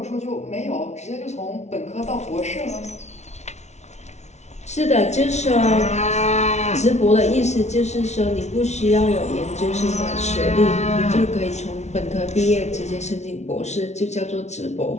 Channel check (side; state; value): right; late; 0.32 ms